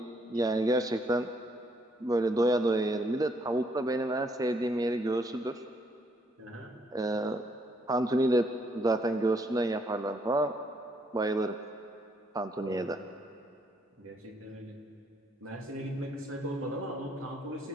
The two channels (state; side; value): normal; both; correlation 0.71